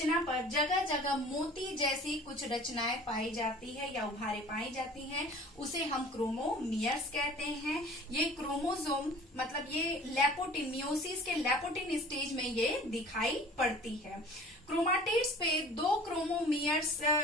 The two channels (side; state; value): both; normal; correlation 0.46